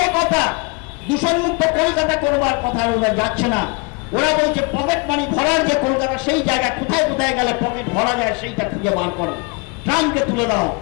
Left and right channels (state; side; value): quieter; right; 29.6 dB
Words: কথা। দূষণমুক্ত কলকাতা করবার কথা ওরা যাচ্ছে না। ওরা বলছে পকেট মানি ভরার যে কলকাতা, সেই জায়গায় কোথায় কোথায় গেলে পকেট ভরা যায় সেইটা খুঁজে বার করো। ট্রামকে তুলে দাও,